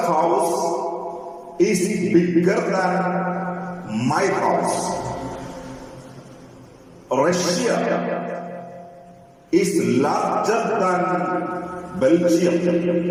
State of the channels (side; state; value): both; identical; correlation 1.00